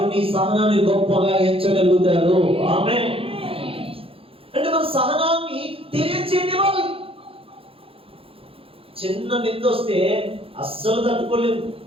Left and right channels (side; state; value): left; late; 0.27 ms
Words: నీ సహనాన్ని గొప్పగా ఎంచగలుగుతారు. ఆమేన్. అంటే మన సహనాన్ని తెలియచేయనివ్వాలి. చిన్న నింద వస్తే అస్సలు తట్టుకోలేదు,